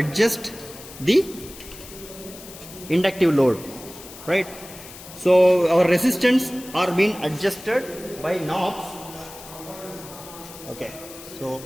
the inductive load, right? So our resistance are being adjusted by knobs. Okay, so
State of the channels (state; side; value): noise; left; hiss, 16 dB below the sound